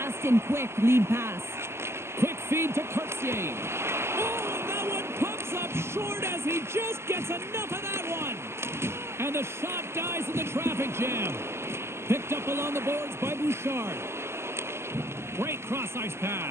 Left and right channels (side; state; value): left; late; 0.12 ms